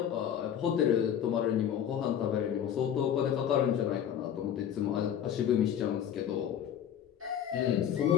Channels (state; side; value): quieter; right; 9.4 dB